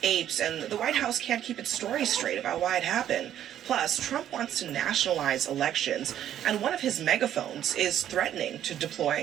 apes, and the White House can't keep its story straight about why it happened. Plus, Trump wants to nationalize elections, and one of his megaphones is threatening to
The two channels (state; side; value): quieter; left; 10.9 dB